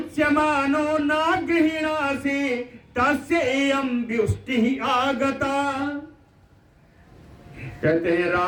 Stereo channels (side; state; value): both; identical; correlation 1.00